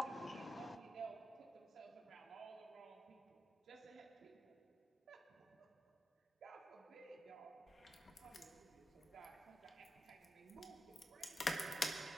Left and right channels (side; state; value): both; normal; correlation 0.89